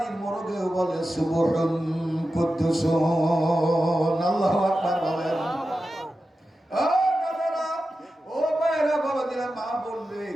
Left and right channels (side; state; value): both; normal; correlation 0.92